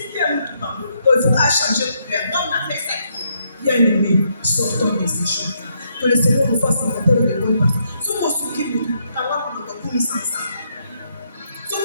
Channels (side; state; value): both; inverted; correlation -0.76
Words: Il faudra changer de l'air. Comme on a fait ça, bien aimé, sortons de ces choses. Que le Seigneur nous fasse rencontrer de bonnes personnes. Ce qu'on se dit, quand on a sans ça. Ce